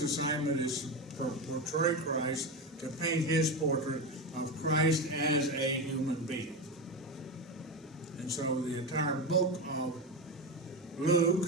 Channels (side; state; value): both; normal; correlation 0.17